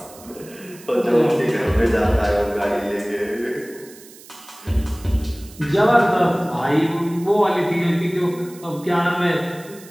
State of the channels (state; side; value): noise; right; hiss, 21 dB below the sound